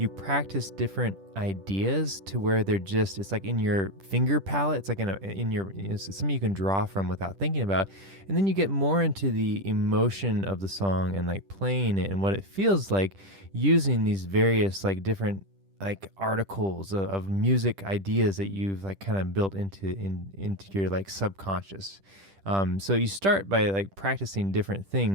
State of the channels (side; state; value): left; late; 10 ms